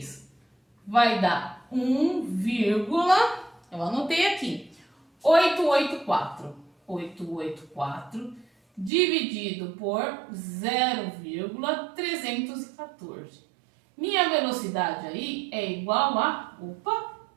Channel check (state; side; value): drops out; left; at 8.9 s